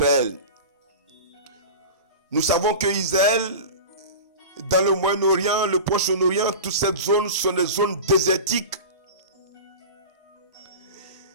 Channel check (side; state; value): both; inverted; correlation -0.31